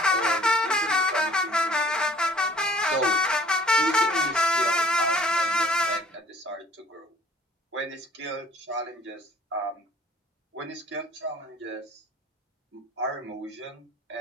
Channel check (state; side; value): normal; both; correlation 0.55